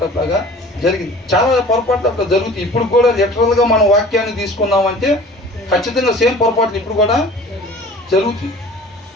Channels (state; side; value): normal; both; correlation 0.45